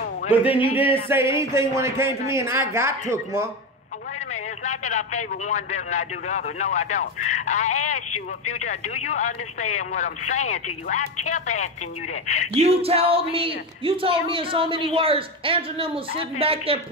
But then you didn't say anything when it came to me, and I got took, Mom. Wait a minute. It's not that I favor one better than I do the other. No, I don't. I asked you a few times, do you understand what I'm saying to you? I kept asking you that. You told me in so many words, Andrew and them was sitting back there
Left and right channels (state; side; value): normal; both; correlation 0.17